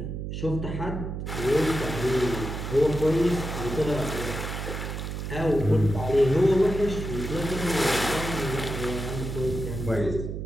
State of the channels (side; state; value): right; noise; hum, 5 dB below the sound